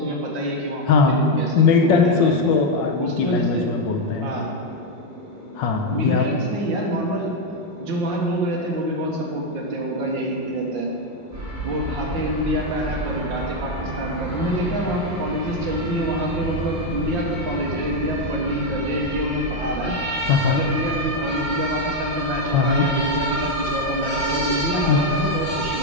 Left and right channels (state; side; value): normal; both; correlation 0.03